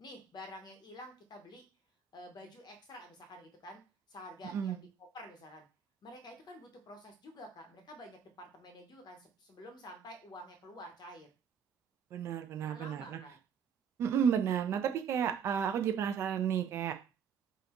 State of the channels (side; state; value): left; quieter; 7.3 dB